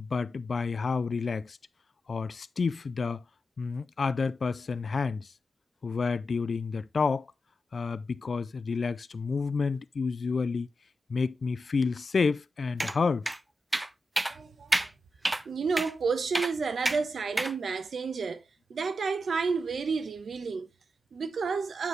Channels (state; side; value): normal; both; correlation 0.89